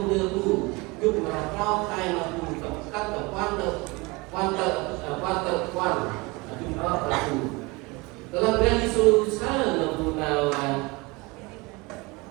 dulu, cuk berapa kai mampu tekan tekan cuk aku. Dalam berani susah mampu nawan.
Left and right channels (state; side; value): quieter; left; 25.2 dB